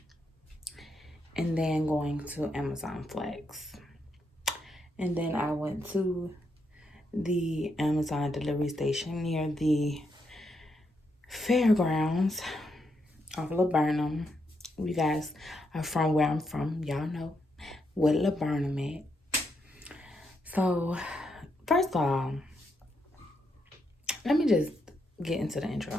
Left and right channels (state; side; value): normal; both; correlation 0.80